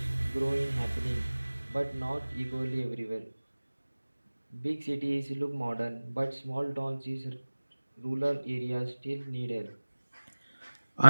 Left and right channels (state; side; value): inverted; both; correlation -1.00